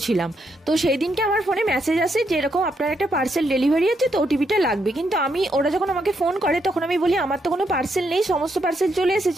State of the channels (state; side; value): normal; both; correlation 0.78